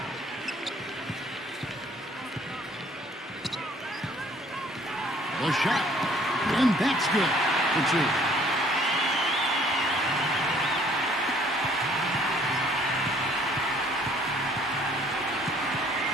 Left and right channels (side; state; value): both; normal; correlation 0.59